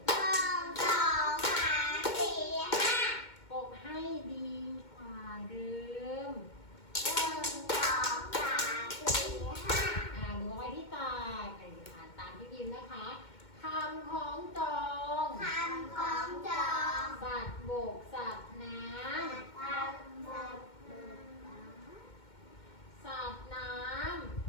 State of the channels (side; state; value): right; late; 2.1 ms